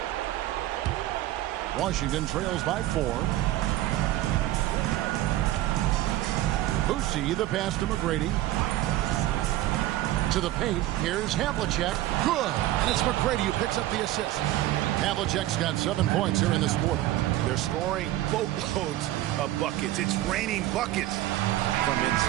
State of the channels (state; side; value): quieter; left; 15.1 dB